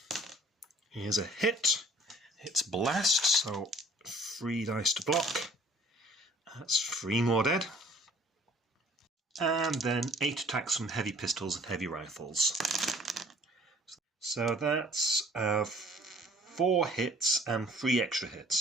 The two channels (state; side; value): normal; both; correlation 0.54